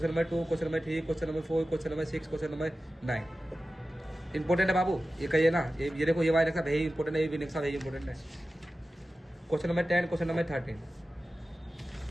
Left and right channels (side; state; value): both; normal; correlation 0.94